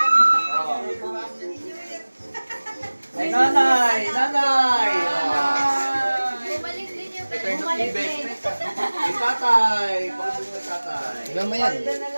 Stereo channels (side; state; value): both; inverted; correlation -1.00